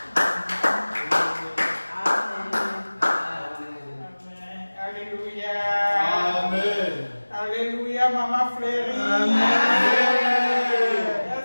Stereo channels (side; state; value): both; inverted; correlation -1.00